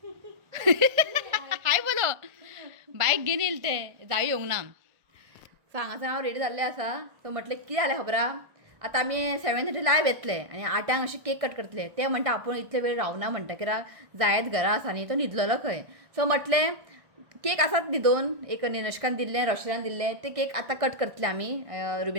हाय बोलो बायक घेवन येयले ते जाय येवंक ना. सो हांगासर हांव रेडी जाल्लें आसा. सो म्हटलें कितें जालें खबर आहा, आतां आमी 7:30 लायव्ह येतले आनी 8 अशें केक कट करतले. ते म्हणटा आपूण इतले वेळ रावना म्हणटा कित्याक जायत घरा आसा न्ही तो न्हिदलेलो खंय. सो म्हटलें केक आसात न्ही 2 एक निनश्कान दिल्लें रोशनान दिल्लें ते केक आतां कट करतले आमी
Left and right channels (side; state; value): left; late; 1.6 ms